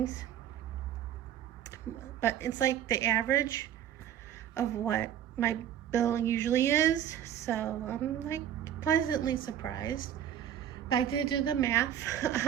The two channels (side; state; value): left; quieter; 10.2 dB